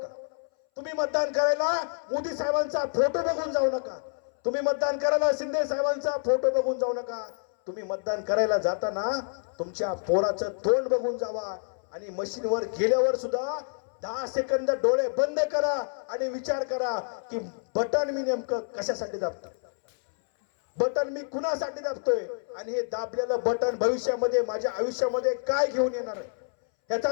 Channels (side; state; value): right; silent; 59 dB below the other